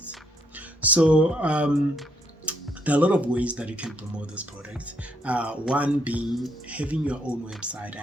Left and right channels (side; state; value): both; normal; correlation 0.73